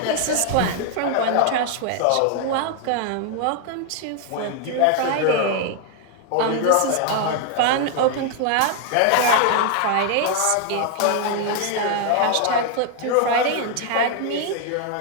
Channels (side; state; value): both; different; correlation 0.00